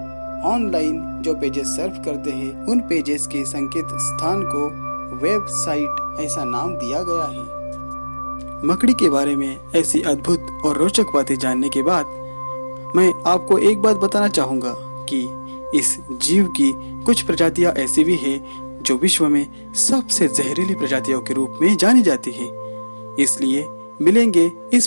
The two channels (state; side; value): inverted; both; correlation -1.00